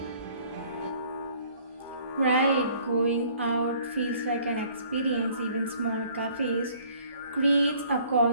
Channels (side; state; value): both; inverted; correlation -0.57